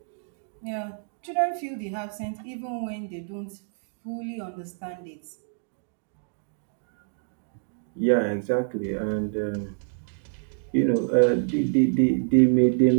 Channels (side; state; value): left; silent; digital silence